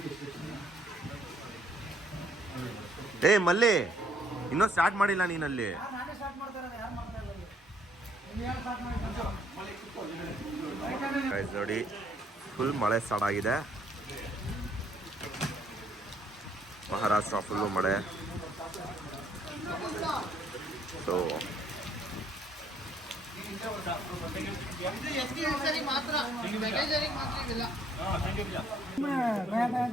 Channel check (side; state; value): both; normal; correlation 0.66